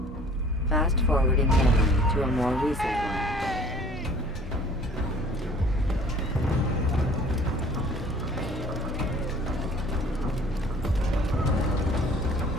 Fast-forwarding memory to a more recent one.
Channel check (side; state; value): both; normal; correlation 0.51